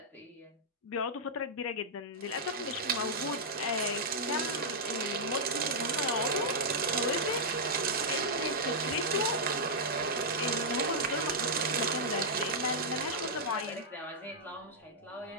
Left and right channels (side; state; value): both; normal; correlation -0.08